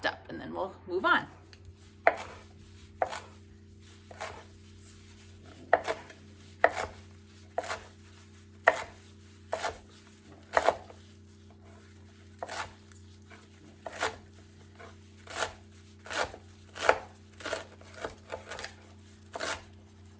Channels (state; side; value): identical; both; correlation 1.00